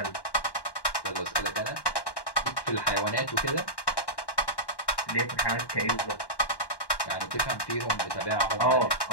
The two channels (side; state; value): right; late; 1.1 ms